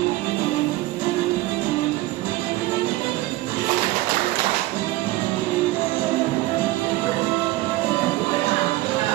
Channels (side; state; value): left; quieter; 18.1 dB